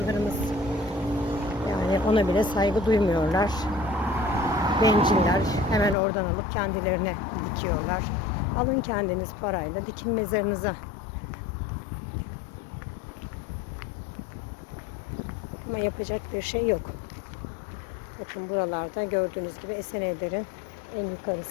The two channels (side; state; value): right; drops out; at 6.0 s